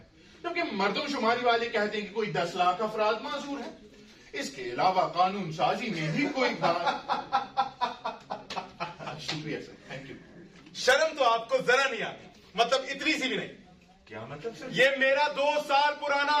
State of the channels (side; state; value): both; identical; correlation 1.00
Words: जबकि मर्दमशुमारी वाले कहते हैं कि कोई 10 लाख अफराद माजूर है। इसके अलावा कानून साजी में भी कोई शुक्रिया सर, थैंक यू। शर्म तो आपको जरा नहीं आती, मतलब इतनी सी भी नहीं। क्या मतलब सर? ये मेरा 2 साल पुराना